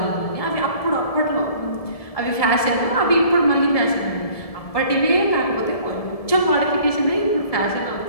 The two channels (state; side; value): late; right; 1.7 ms